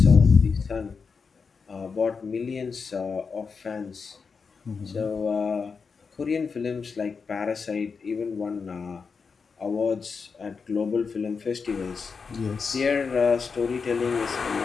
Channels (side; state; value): right; quieter; 5.3 dB